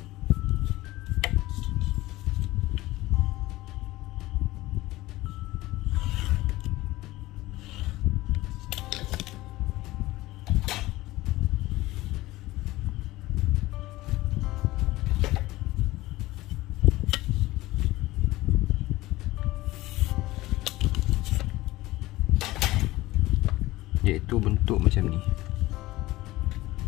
Iaitu bentuk macam ni.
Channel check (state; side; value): quieter; right; 18.2 dB